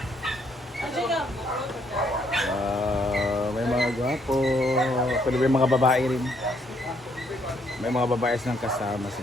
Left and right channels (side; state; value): both; normal; correlation 0.70